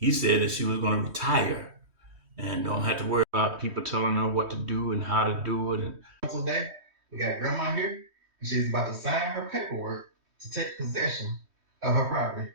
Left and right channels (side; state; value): left; late; 3.2 ms